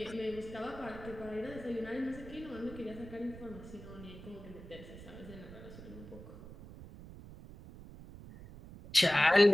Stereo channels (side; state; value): right; noise; rumble, 15 dB below the sound